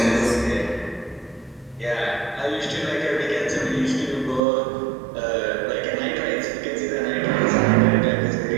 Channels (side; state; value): left; drops out; at 4.4 s